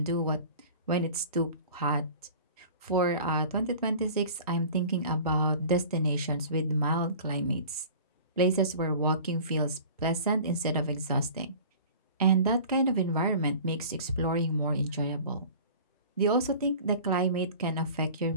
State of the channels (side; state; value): both; inverted; correlation -0.42